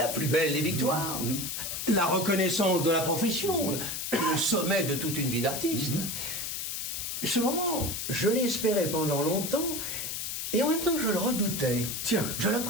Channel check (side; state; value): left; noise; hiss, 4 dB below the sound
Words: plus belle des victoires, la reconnaissance de la profession, le sommet de toute une vie d'artiste. Ce moment, je l'espérais pendant longtemps, et en même temps je le redoutais. Tiens. Je